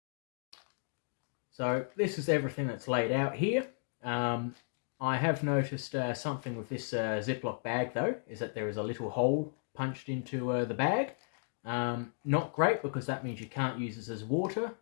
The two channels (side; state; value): right; silent; digital silence